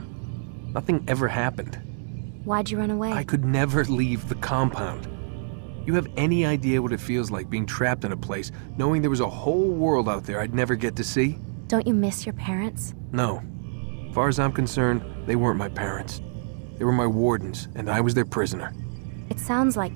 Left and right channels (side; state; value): left; silent; 61 dB below the other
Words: Nothing ever happened. Why'd you run away? I could never leave the compound. You have any idea what it feels like being trapped in a place, knowing there was a whole world out there I'd never get to see? Don't you miss your parents? No. As far as I'm concerned, they weren't my parents. They were my wardens, and I was their prisoner. It sounds like